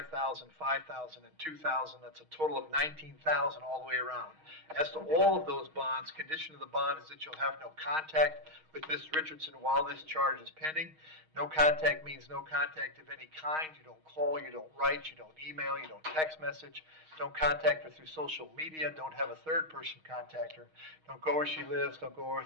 $5,000, and $2,000. That's a total of $19,000 all the way around. As to all of those bonds, condition of the bond is that you'll have no contact with Ms. Richardson while this charge is pending. No contact means no contact of any kind. You don't call, you don't write, you don't email, you don't text message. Don't contact her through social media. Don't have a third person contact her. Don't go where she lives. Don't go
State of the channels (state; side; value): late; left; 6.4 ms